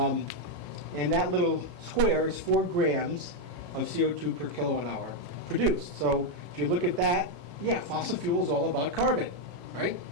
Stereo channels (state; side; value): late; left; 33 ms